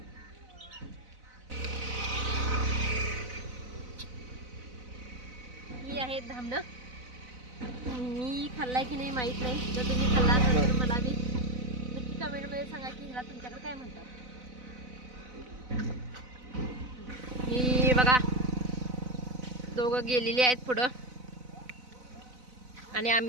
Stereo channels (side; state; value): left; late; 4.0 ms